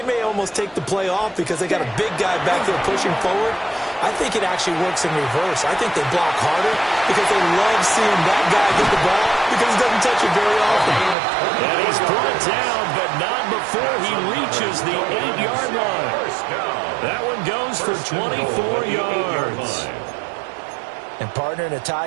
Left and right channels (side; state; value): left; drops out; at 11.2 s